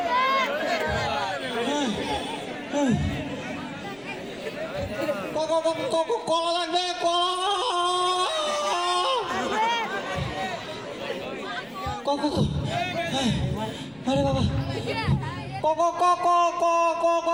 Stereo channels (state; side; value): noise; left; rumble, 29 dB below the sound